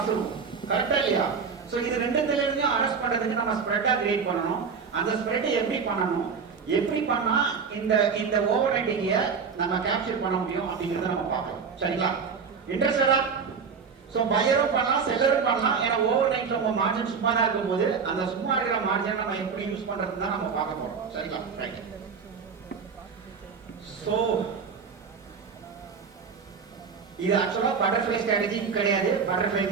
இருக்கும். கரெக்டா இல்லையா? சோ இது ரெண்டுத்துல இருந்தும் அரெஸ்ட் பண்றதுக்கு நம்ம ஸ்ப்ரெட்டா கிரியேட் பண்ணணும். அந்த ஸ்ப்ரெட் எப்படி பண்ணணும், எப்படி பண்ணா இந்த ஓவர் நைட்டிங்க நம்ம கேப்சர் பண்ண முடியும் அப்படிங்கறத நம்ம பார்க்கலாம். சரிங்களா? இன்ட்ரெஸ்டடா? சோ பையரும் பண்ணலாம், செல்லரும் பண்ணலாம். ஏன்னா ஓவர் நைட்ல உங்க மார்ஜின் சும்மா தான் இருக்கும்போது அந்த சும்மா இருக்கிற மார்ஜினை நம்ம எப்படி யூஸ் பண்றதுன்னு தான் நம்ம பார்க்க போறோம். சரிங்களா? ரைட். சோ இது ஆக்சுவலா பட்டர்ஃப்ளை ஸ்ட்ராட்டஜி கிடையாது. பட்டர்ஃப்ளை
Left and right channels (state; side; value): quieter; left; 5.8 dB